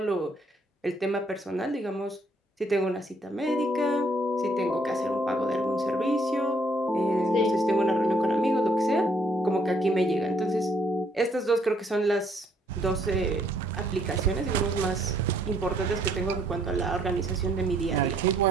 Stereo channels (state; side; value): normal; both; correlation 0.67